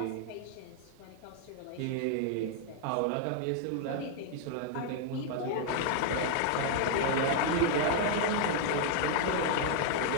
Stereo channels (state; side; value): different; both; correlation 0.00